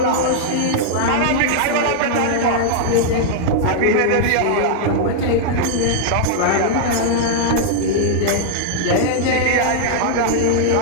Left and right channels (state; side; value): different; both; correlation -0.01